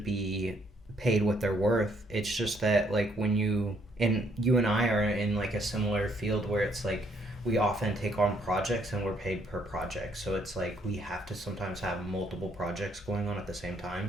be paid what they're worth. It's just that like when you and I are in like a similar field where it's like we often take on projects and we're paid per project. So it's like we have to sometimes have multiple projects going on at the same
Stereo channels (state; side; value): normal; both; correlation 0.69